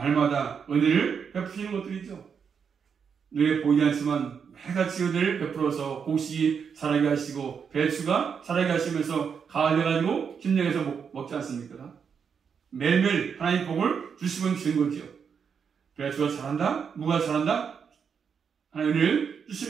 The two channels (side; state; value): left; quieter; 6.7 dB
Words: 은혜를 베푸시는 것들이죠. 눈에 보이지 않지만 매같이 은혜를 베풀어서 곡식이 자라게 하시고 배추가 자라게 하시면서 가을 돼가지고 김장해서 먹지 않습니까? 매일매일 하나님 복을 주시면 주는 거죠. 배추가 자란다, 무가 자란다, 하나님을